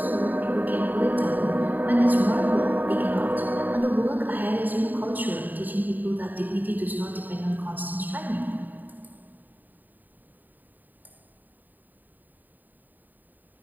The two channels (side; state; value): left; late; 0.087 ms